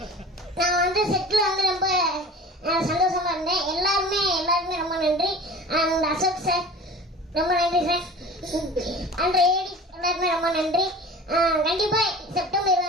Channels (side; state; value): both; normal; correlation 0.39